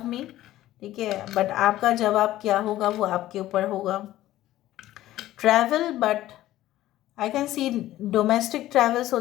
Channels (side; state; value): right; quieter; 14.7 dB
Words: me, ठीक है, बट आपका जवाब क्या होगा वो आपके ऊपर होगा। Travel, but I can C domestic travels हो